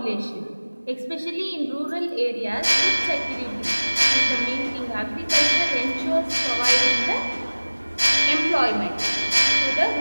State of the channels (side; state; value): both; inverted; correlation -1.00